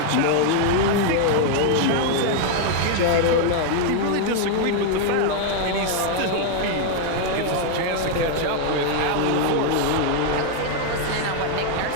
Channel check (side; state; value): both; different; correlation 0.00